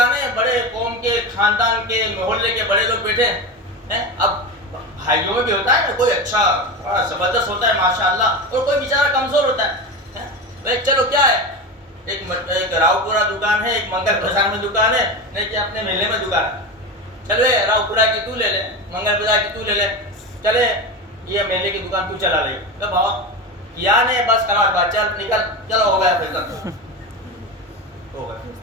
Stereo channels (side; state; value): both; normal; correlation 0.22